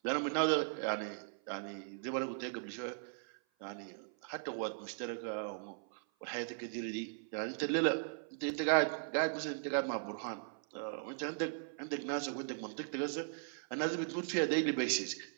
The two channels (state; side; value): silent; left; 52 dB below the other